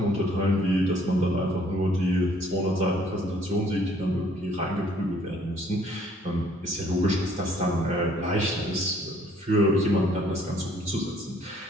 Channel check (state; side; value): normal; both; correlation 0.61